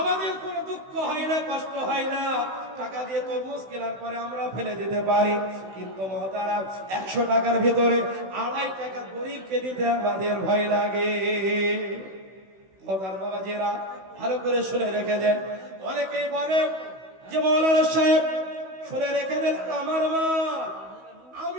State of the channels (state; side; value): late; left; 16 ms